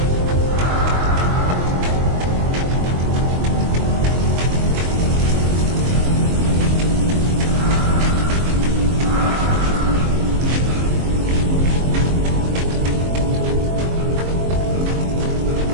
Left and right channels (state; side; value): late; left; 22 ms